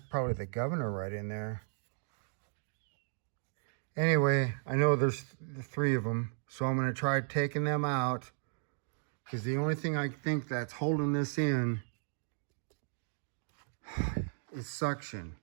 the governor right in there. Anyway, I know there's the three of them, so I'm going to try taking them out, because the only thing I think that's holding this in is suction.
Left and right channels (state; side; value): silent; left; digital silence